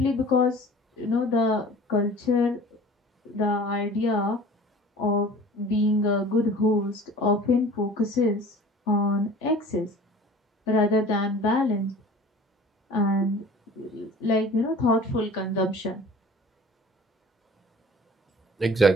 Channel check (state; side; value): normal; both; correlation 0.44